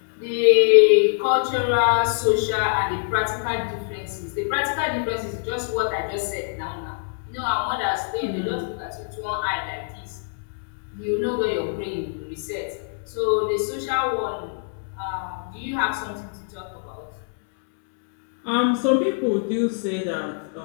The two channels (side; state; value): right; silent; digital silence